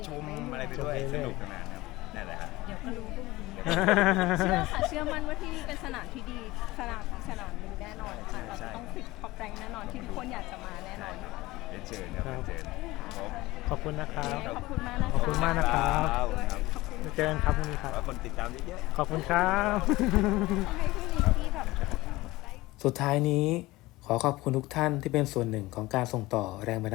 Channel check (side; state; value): right; quieter; 19.5 dB